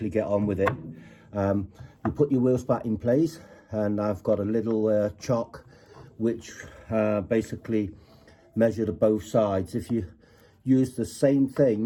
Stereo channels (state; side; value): identical; both; correlation 1.00